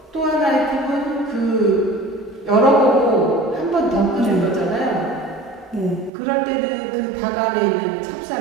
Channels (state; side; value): drops out; left; at 6.1 s